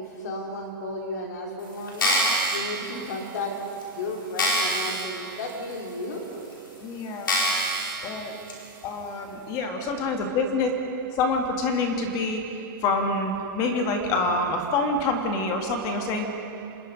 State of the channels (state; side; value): normal; both; correlation 0.08